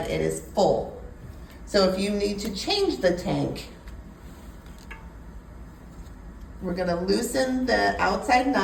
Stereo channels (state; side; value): identical; both; correlation 1.00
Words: it is full. So if you need to change the tank, we're going to loosen the outside